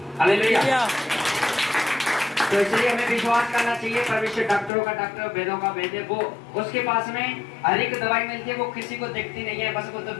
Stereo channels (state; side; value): drops out; right; at 4.7 s